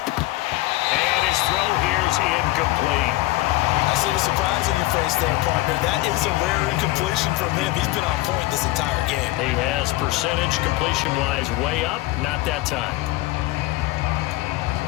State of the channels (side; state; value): right; quieter; 18.3 dB